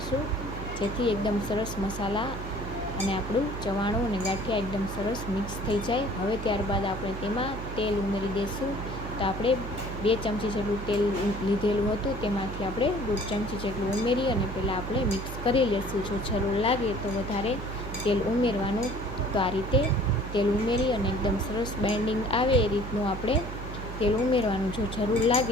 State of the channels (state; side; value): noise; right; hum, 8 dB below the sound